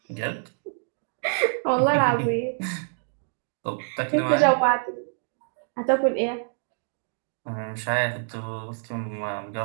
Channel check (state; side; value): silent; left; digital silence